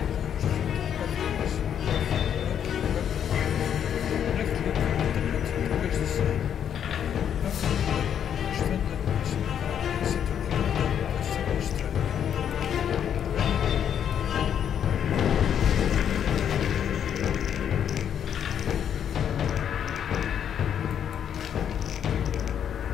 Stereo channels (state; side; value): quieter; right; 8.9 dB